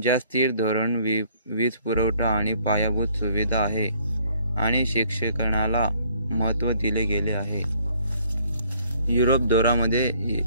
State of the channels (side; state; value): both; inverted; correlation -0.62